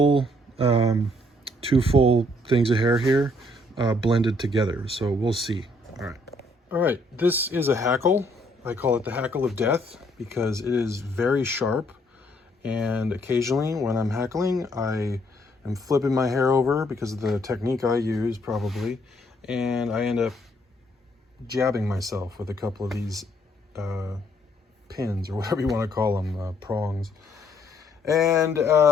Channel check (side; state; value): both; normal; correlation 0.68